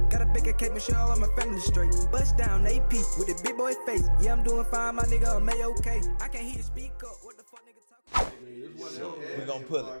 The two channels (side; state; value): both; inverted; correlation -1.00